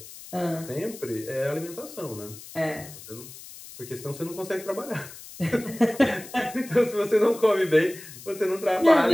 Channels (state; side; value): noise; left; hiss, 16 dB below the sound